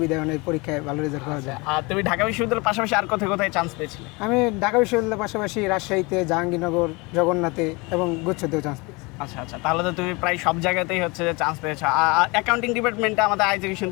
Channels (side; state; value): right; quieter; 26.4 dB